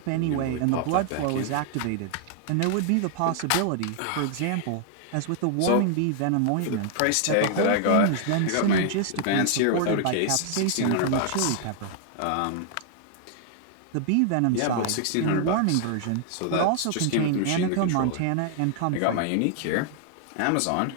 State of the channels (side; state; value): both; different; correlation 0.00